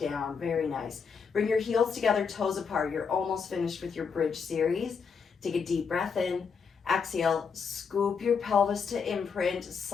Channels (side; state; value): right; quieter; 5.9 dB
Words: Very nice. Bring your heels together, toes apart. You're almost finished with your bridge series. Take a deep breath in. Exhale, scoop your pelvis to imprint.